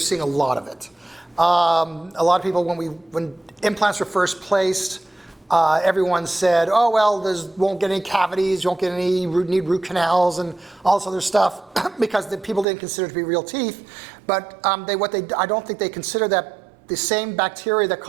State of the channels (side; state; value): left; drops out; at 12.7 s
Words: a lot of it. A lot of people, when implants were first placed, everyone said, oh, well, won't get any cavities, you won't get any need root canals and all this other stuff because the people didn't consider it to be real teeth. But I don't think they consider that the same bacteria that